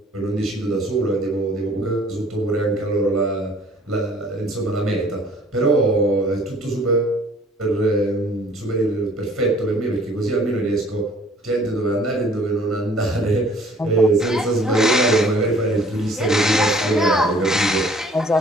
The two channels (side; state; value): both; normal; correlation 0.55